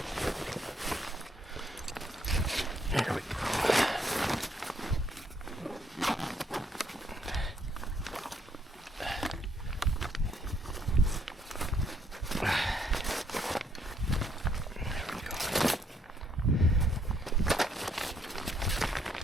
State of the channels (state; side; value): normal; both; correlation 0.70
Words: There we go.